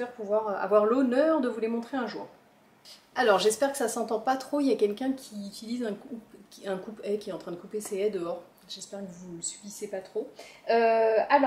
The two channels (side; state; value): both; identical; correlation 1.00